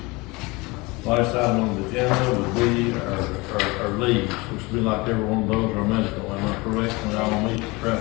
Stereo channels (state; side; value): quieter; right; 24.4 dB